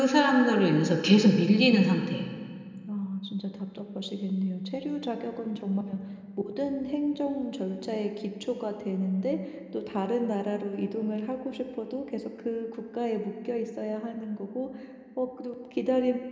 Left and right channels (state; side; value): identical; both; correlation 1.00